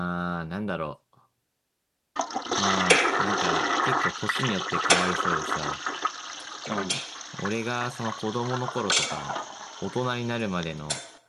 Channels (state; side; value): identical; both; correlation 1.00